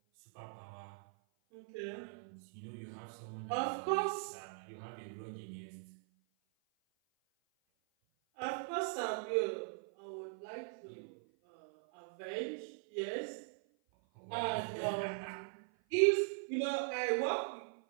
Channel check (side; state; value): left; silent; 51 dB below the other